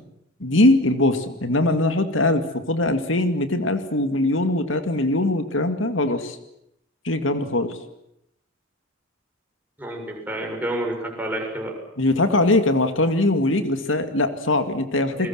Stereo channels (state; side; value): normal; both; correlation 0.27